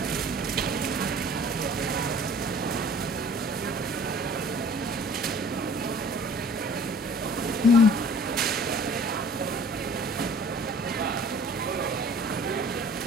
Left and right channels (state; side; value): normal; both; correlation 0.49